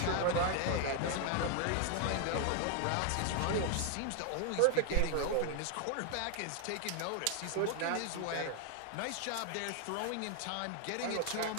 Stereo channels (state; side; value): different; both; correlation 0.00